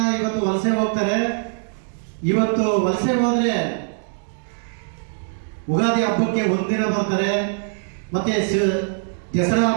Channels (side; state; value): left; silent; digital silence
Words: ಇವತ್ತು ವಲಸೆ ಹೋಗ್ತಾರೆ. ಇವತ್ತು ವಲಸೆ ಹೋದ್ರೆ ಉಗಾದಿ ಹಬ್ಬಕ್ಕೆ ಒಂದಿನ ಬರ್ತಾರೆ, ಮತ್ತೆ ದಸರಾ